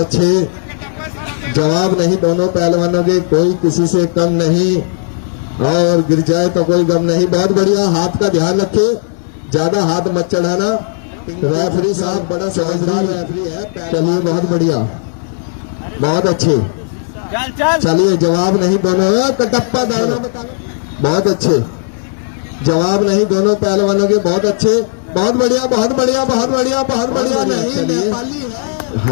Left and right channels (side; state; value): right; silent; digital silence